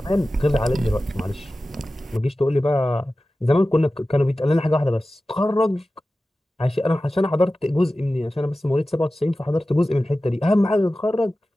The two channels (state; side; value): normal; both; correlation 0.95